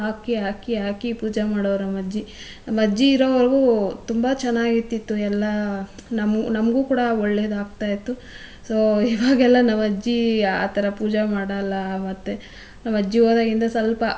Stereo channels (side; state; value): both; identical; correlation 1.00